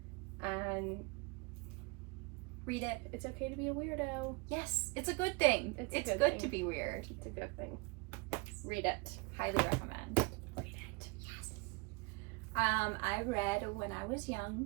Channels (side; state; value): left; quieter; 28.0 dB